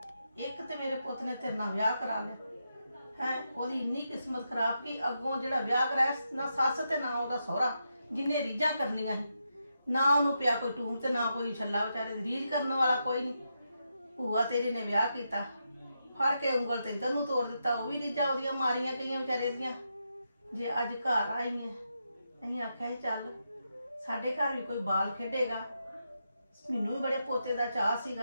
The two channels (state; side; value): inverted; both; correlation -0.84